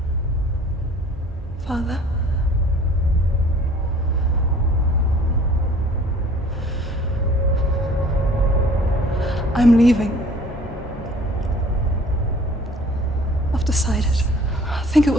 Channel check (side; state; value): both; normal; correlation 0.51